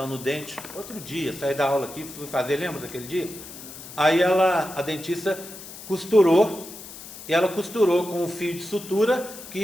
no dente outro dia, saí da aula aqui, fui fazer, lembra daquele dia? Aí a dentista costurou, e ela costurou com um fio de sutura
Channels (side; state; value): left; noise; hiss, 14 dB below the sound